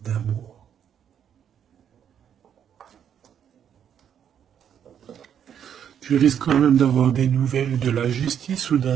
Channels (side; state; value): left; quieter; 8.8 dB